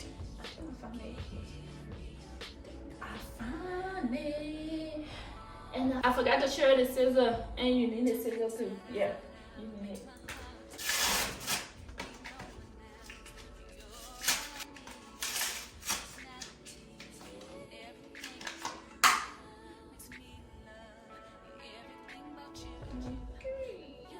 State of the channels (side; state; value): both; identical; correlation 1.00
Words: And I forgot to share the scissor, and you need the scissor too. Yeah, you need it.